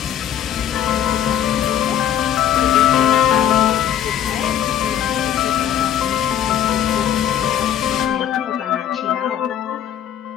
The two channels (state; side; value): quieter; right; 10.1 dB